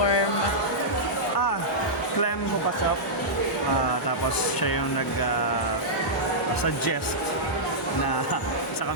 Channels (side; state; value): both; normal; correlation -0.11